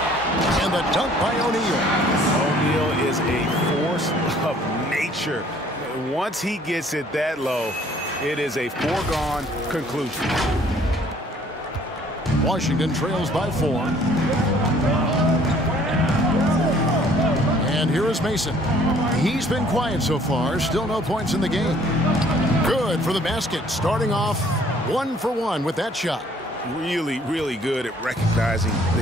And the dunk by O'Neal. O'Neal is a force of nature. Once he gets it that low, it is a foregone conclusion. Washington trails by 4. And here is Mason. He's been quiet so far. Still no points in the game. Good for the basket. Starting off 1 for 1 with that shot. Really, really good at recognizing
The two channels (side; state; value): both; normal; correlation 0.58